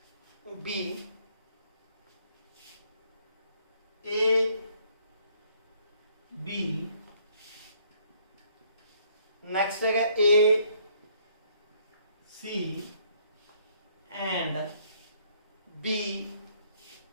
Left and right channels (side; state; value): both; inverted; correlation -0.65